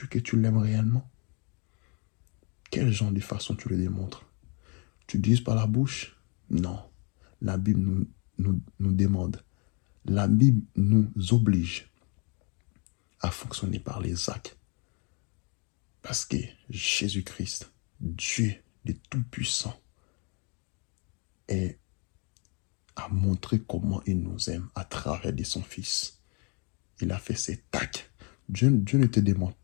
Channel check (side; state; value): right; quieter; 34.5 dB